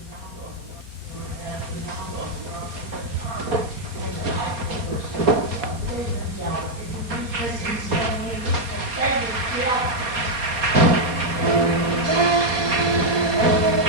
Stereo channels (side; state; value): left; late; 4.2 ms